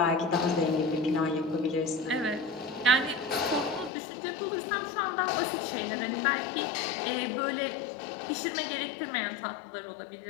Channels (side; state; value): right; drops out; at 3.9 s